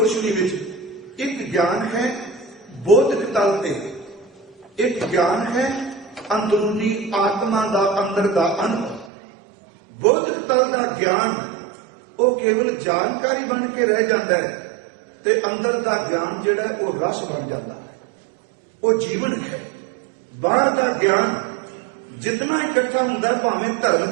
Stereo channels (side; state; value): left; drops out; at 9.1 s